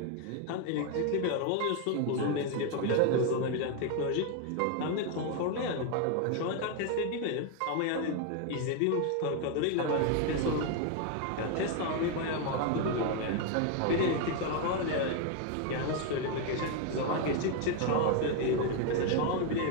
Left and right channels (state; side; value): different; both; correlation 0.01